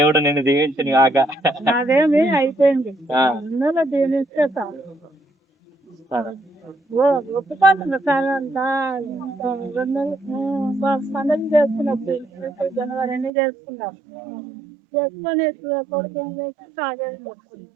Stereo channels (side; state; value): left; drops out; at 13.3 s